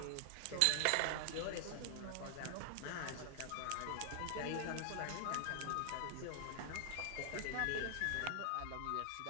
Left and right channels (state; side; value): different; both; correlation 0.00